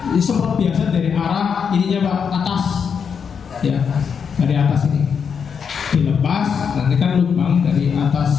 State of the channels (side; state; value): right; quieter; 6.7 dB